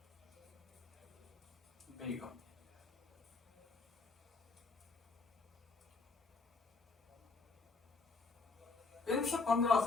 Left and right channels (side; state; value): right; quieter; 4.0 dB